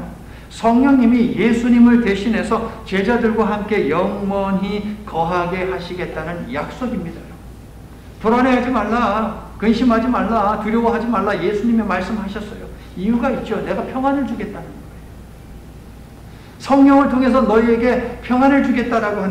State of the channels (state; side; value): identical; both; correlation 1.00